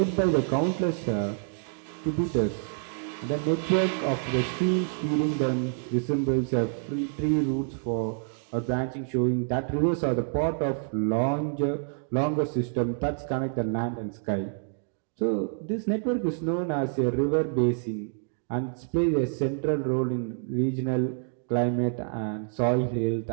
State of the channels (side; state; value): left; silent; 60 dB below the other